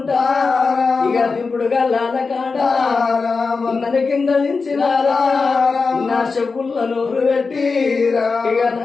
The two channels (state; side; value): quieter; right; 4.5 dB